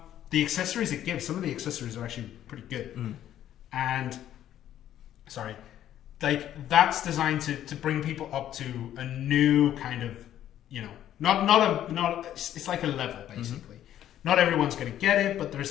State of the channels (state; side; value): quieter; right; 11.5 dB